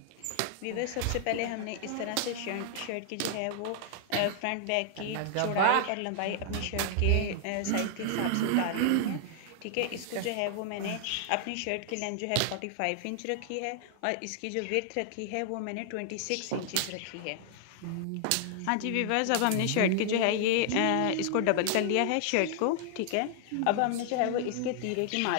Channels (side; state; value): both; different; correlation 0.00